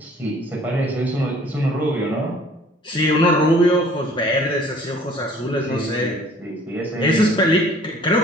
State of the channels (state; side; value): normal; both; correlation 0.54